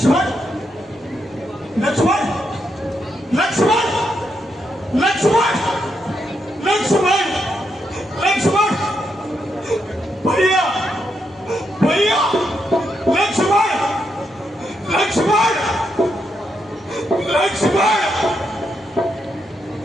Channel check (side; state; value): both; normal; correlation 0.81